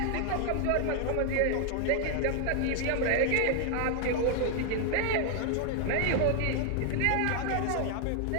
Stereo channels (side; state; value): both; different; correlation 0.00